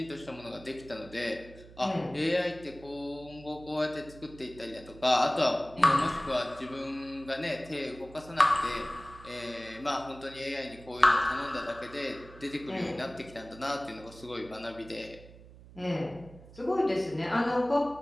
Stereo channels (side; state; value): right; noise; hum, 19 dB below the sound